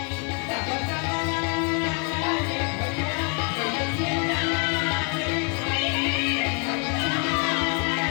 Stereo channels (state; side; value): quieter; right; 34.5 dB